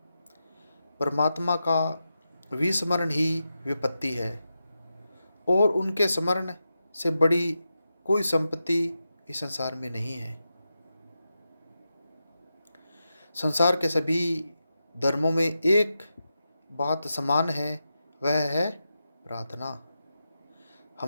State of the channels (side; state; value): both; inverted; correlation -0.89